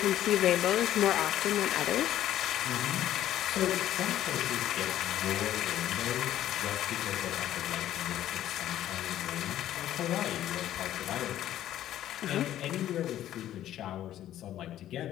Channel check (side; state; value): right; quieter; 12.4 dB